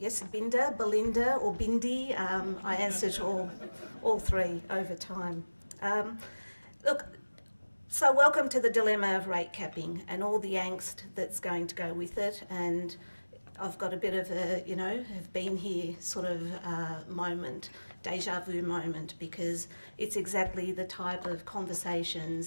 Binda, Belinda or Bindi, I answered all three over time. Look, so welcome to the dilemma of rate capping and all the angst that's going to go with it, and I've got a bit of a, have been here sort of moment, deja vu moment, because it's exactly the type of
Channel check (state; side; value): inverted; both; correlation -1.00